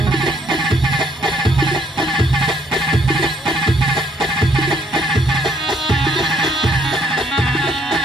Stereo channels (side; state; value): both; normal; correlation 0.67